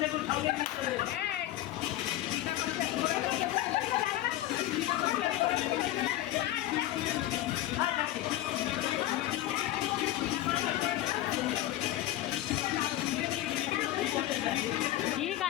দেখুন সঙ্গে নিয়ে চলে এলেন। কি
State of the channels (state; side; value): quieter; right; 14.5 dB